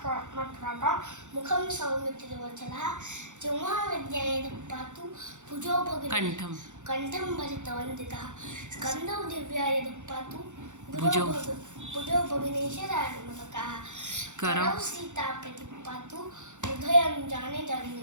मुखं सौमित्रिवचलः जेव्हा विद्याये पातु भुजो भगिनी कंठं भरितवन्दितः स्कन्धौ दिव्याय पातु भुजो भगिनीशराजमतकः करौ सीता प्रतिपातु हृदयं जाने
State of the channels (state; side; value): late; left; 0.85 ms